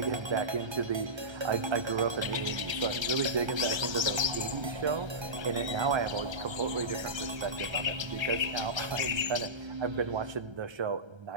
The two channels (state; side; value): late; left; 1.3 ms